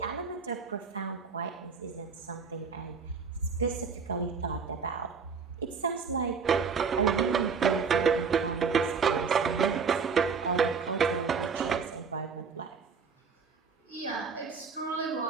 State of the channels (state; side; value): quieter; left; 5.6 dB